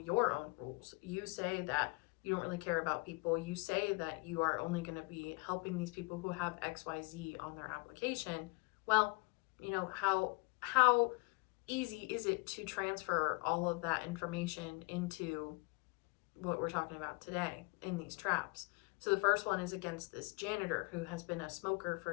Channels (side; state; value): right; quieter; 29.7 dB